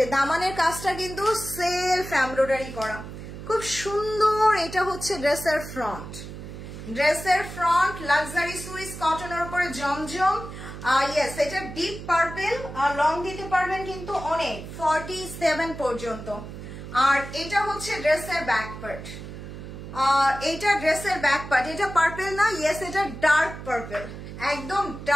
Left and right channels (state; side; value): noise; right; hum, 11 dB below the sound